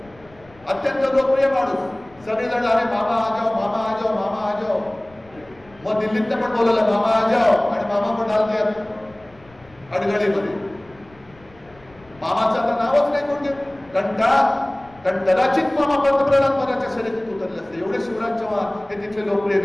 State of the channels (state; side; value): noise; left; rumble, 26 dB below the sound